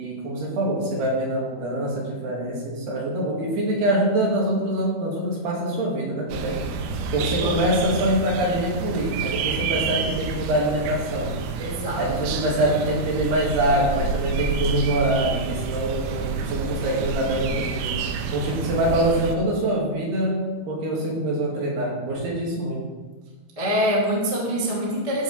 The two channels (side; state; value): both; normal; correlation -0.10